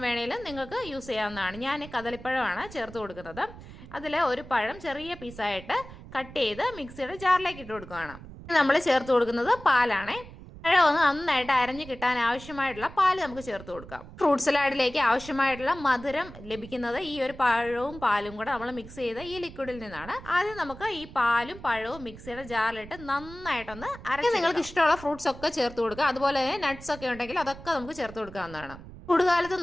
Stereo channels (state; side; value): noise; right; rumble, 16 dB below the sound